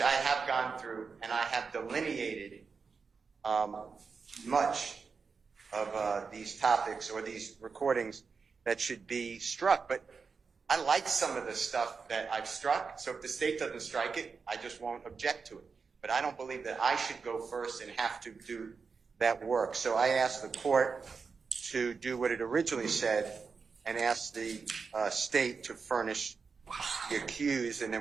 I have gone through and I have delineated much of these topics or these recordings that should be struck. But I like some of the stuff that I've struck, so if the state doesn't strike it, I just won't object to it. but I don't believe that I should go first and have to do that work. So I asked the court to do what it originally said and ask the state to furnish the accused, and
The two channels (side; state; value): left; quieter; 5.1 dB